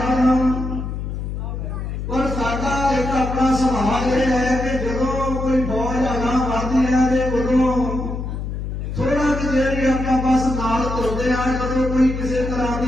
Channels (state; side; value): noise; left; hum, 5 dB below the sound